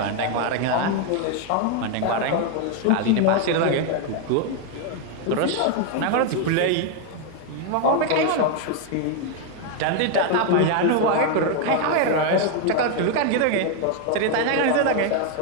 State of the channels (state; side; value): different; both; correlation 0.01